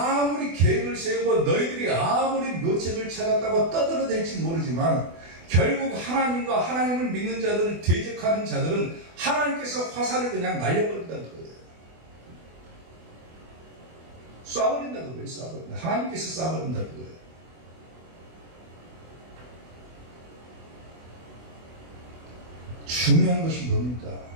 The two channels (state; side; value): late; left; 24 ms